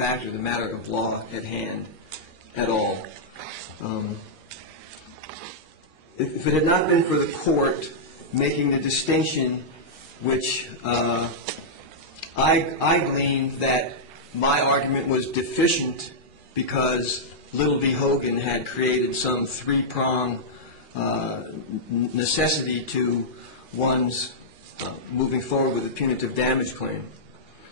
or the matter of law at hand at all. If it had not been for the court making the distinction which I gleaned that my argument was deficient because Little v. Hogan had created some three-prong necessity to one's moving forward with a punitive damage claim.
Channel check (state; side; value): late; left; 2.4 ms